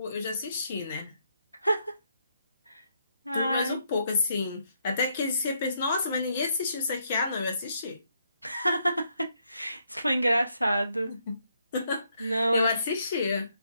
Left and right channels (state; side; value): inverted; both; correlation -0.75